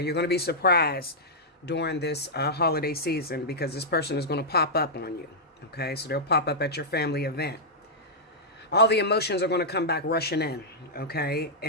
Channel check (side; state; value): both; normal; correlation -0.09